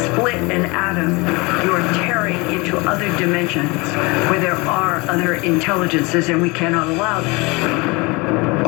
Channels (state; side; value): quieter; right; 26.0 dB